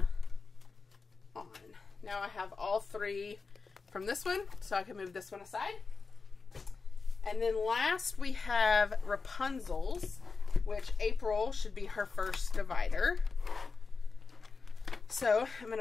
on. Now I have all three from this one, so I can move this one aside. And then last we have Rapunzel's, which April should be her first divider. So I'm going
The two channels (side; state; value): right; quieter; 4.5 dB